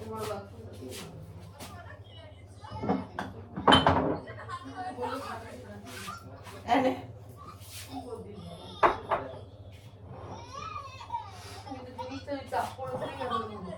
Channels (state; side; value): identical; both; correlation 1.00